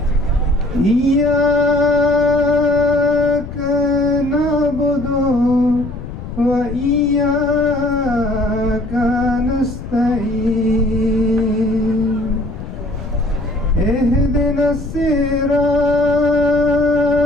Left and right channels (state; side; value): noise; left; rumble, 10 dB below the sound